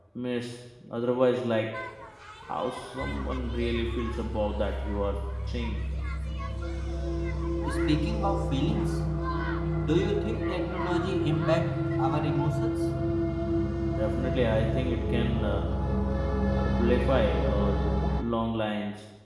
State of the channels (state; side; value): identical; both; correlation 1.00